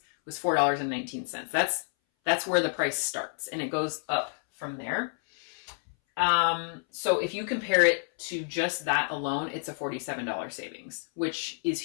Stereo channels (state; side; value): silent; right; 58 dB below the other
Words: was $4.19. That's That's where the price starts, and it goes up from there. So if you compare it to just that alone, it's a $47 savings, which is